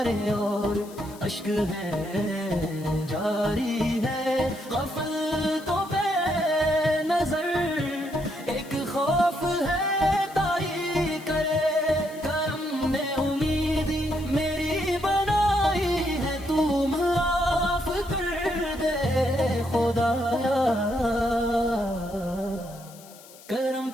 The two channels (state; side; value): noise; left; hiss, 21 dB below the sound